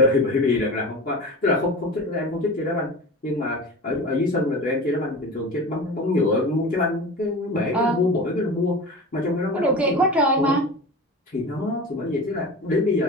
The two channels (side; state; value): both; normal; correlation 0.32